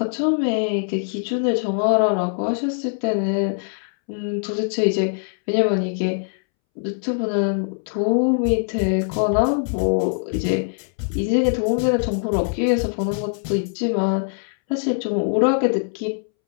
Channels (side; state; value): right; silent; 64 dB below the other